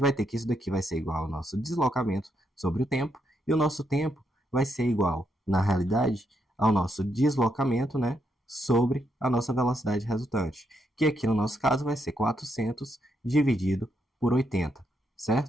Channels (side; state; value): both; normal; correlation 0.79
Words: ter que isso daqui vai ser igual ao nosso deslocamento sobre o tempo, e o nosso tempo vai ser igual, na realidade, ao nosso deslocamento, né, sobre a nossa velocidade resultante, que aqui no nosso caso vai ser 400 dividido por 80,